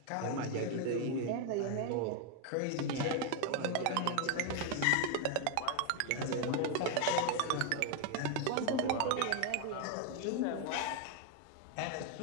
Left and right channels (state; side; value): different; both; correlation 0.00